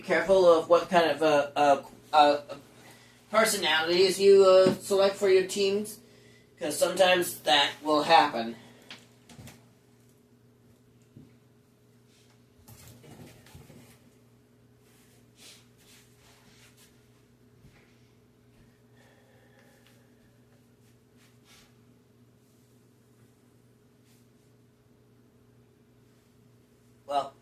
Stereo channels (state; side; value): identical; both; correlation 1.00